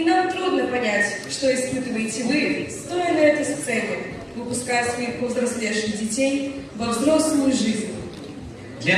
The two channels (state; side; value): identical; both; correlation 1.00